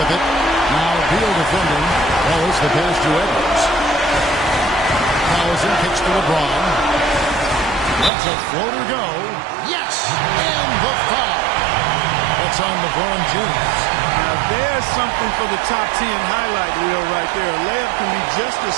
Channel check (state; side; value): drops out; left; at 8.1 s